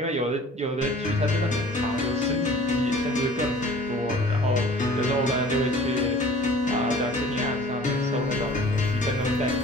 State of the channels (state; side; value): normal; both; correlation 0.48